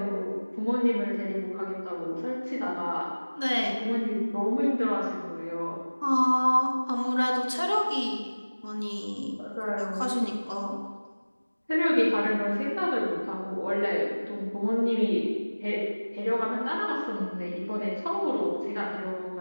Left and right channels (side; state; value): both; inverted; correlation -1.00